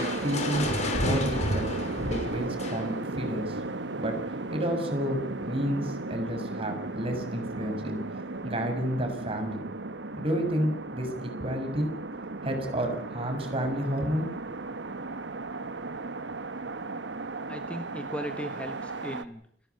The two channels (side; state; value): both; normal; correlation 0.50